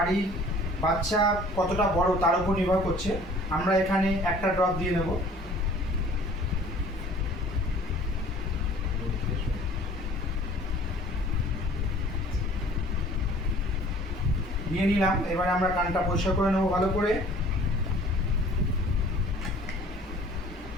বাচ্চা কতটা বড় তার উপর নির্ভর করছে। আমরা এখানে একটা ড্রপ দিয়ে নেব। নিয়ে নিলাম। এবারে আমরা কানটা পরিষ্কার করে নেবো ভালো করে।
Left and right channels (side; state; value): both; normal; correlation 0.51